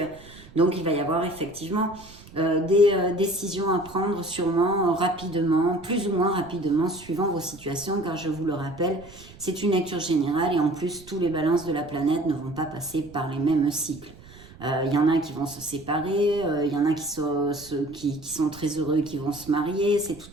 Donc, il va y avoir effectivement des décisions à prendre sûrement rapidement, plus ou moins rapidement, suivant vos situations, car je vous le rappelle, c'est une lecture générale et en plus, tous les balances de la planète ne vont pas passer par les mêmes cycles. Il y en a qui vont se séparer, il y en a qui sont très heureux, qui vont se marier, c'est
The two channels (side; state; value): right; noise; rumble, 21 dB below the sound